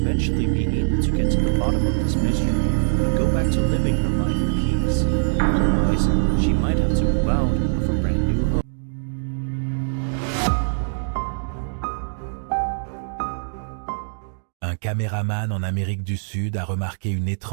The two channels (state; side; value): silent; left; digital silence